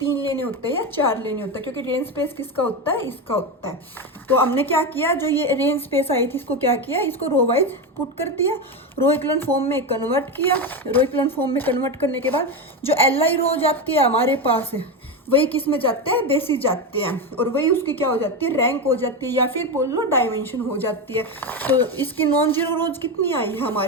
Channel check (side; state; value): both; normal; correlation 0.15